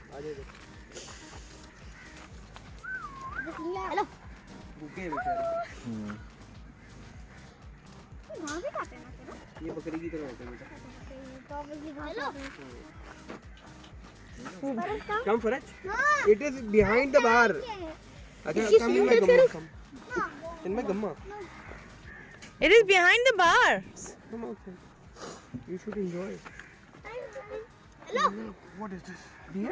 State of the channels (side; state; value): both; identical; correlation 1.00